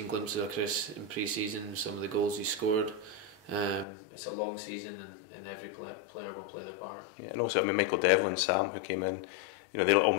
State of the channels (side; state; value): right; drops out; at 3.9 s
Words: glimpses of Chris in pre-season, some of the goals he scored. It's a long season, and every player will play their part. Yeah, and also, I mean, Michael Devlin, Sam, who came in, you know, they're